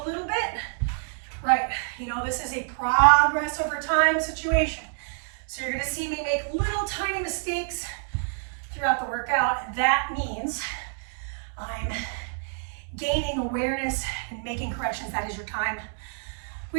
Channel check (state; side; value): silent; left; 57 dB below the other